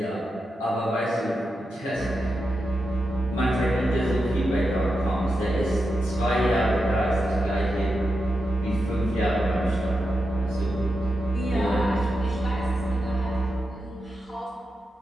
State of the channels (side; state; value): both; normal; correlation 0.88